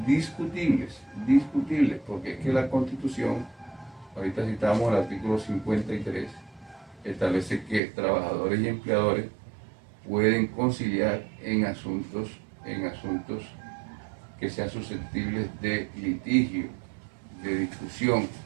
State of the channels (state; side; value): drops out; left; at 7.8 s